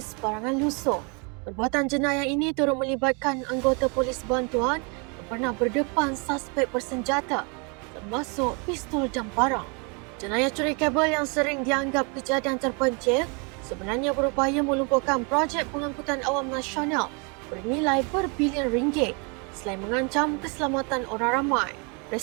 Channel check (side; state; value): left; quieter; 33.8 dB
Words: barangan lusuh. Perbuatan jenayah ini turut melibatkan anggota polis bantuan yang pernah berdepan suspek bersenjata termasuk pistol dan parang. Jenayah curi kabel yang sering dianggap kejadian terpencil sebenarnya berupaya melumpuhkan projek pengangkutan awam nasional bernilai berbilion ringgit selain mengancam keselamatan orang ramai.